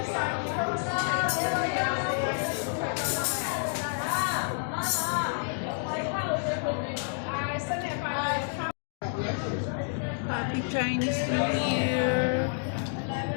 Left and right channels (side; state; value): right; silent; digital silence